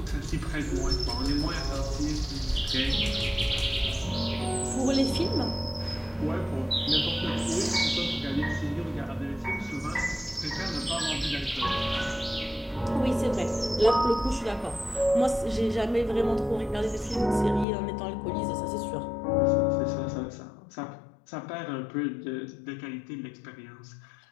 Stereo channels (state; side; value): drops out; right; at 17.7 s